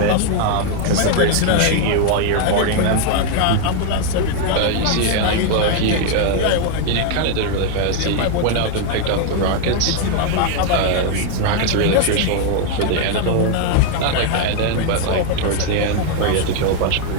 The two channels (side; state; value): both; different; correlation 0.00